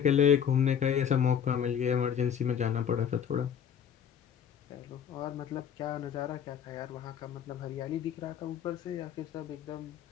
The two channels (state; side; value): quieter; right; 8.4 dB